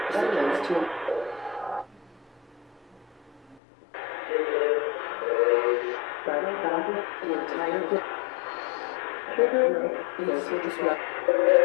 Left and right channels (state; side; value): drops out; right; at 3.6 s